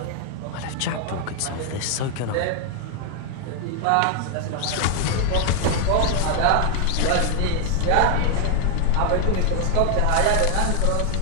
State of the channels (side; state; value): both; different; correlation 0.00